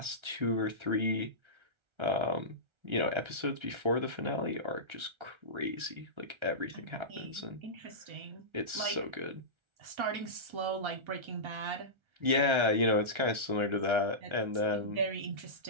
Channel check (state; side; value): late; left; 1.3 ms